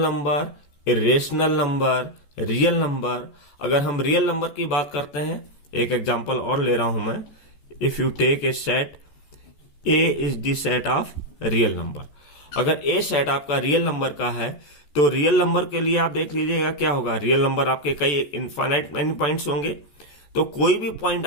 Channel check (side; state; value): right; late; 14 ms